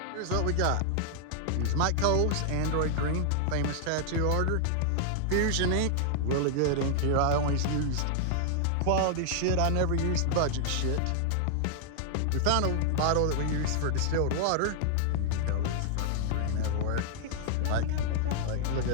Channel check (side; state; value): both; different; correlation -0.01